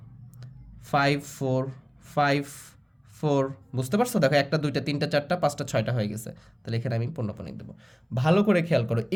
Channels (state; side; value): identical; both; correlation 1.00